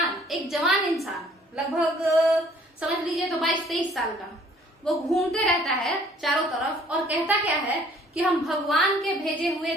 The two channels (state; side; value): normal; both; correlation 0.57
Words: एक जवान इंसान, लगभग समझ लीजिए तो 22-23 साल का, वो घूमते रहता है चारों तरफ और कहता क्या है कि हम भगवान के भेजे हुए